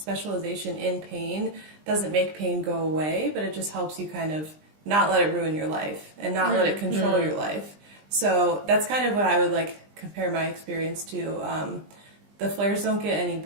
in pain doesn't make pain go away, but it just helps you kind of not let it ruin your life and not let it control your life. So that's kind of what I would like compare my experience to. The flares don't get any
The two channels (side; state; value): left; late; 20 ms